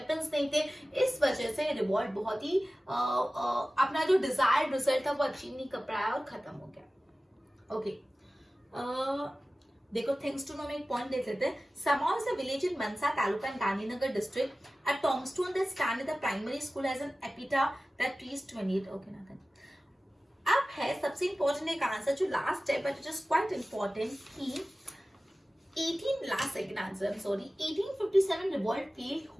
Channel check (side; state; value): both; normal; correlation 0.96